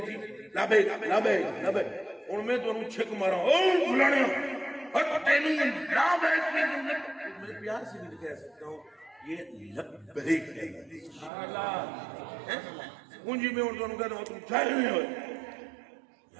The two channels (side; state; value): left; drops out; at 11.3 s